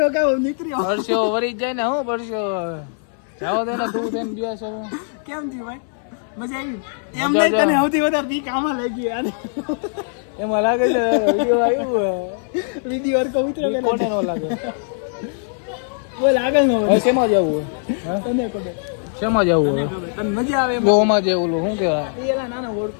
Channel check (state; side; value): silent; right; 65 dB below the other